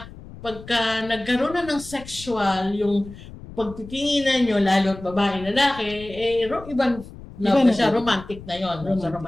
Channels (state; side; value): noise; left; rumble, 16 dB below the sound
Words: nagkaroon na ng sexual, yung pagtitinginan nyo, lalo at babae, lalaki, ibang love na siya, romantic na yon, sa